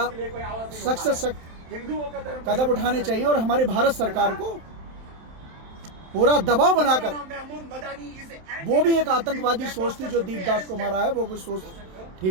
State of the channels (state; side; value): late; left; 27 ms